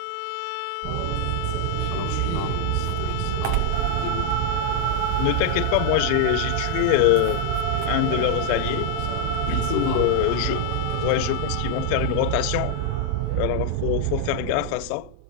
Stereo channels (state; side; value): different; both; correlation 0.00